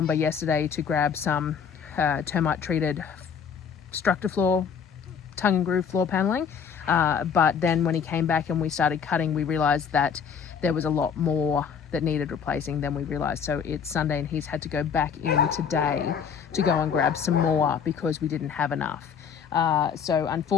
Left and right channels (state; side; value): quieter; right; 6.8 dB